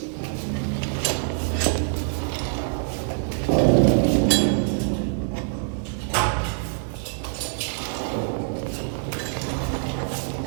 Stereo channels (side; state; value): left; silent; digital silence